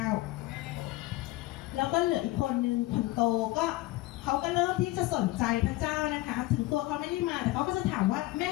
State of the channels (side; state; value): right; quieter; 18.4 dB